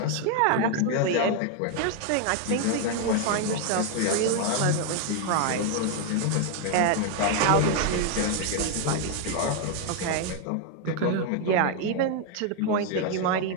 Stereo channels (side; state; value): both; different; correlation 0.00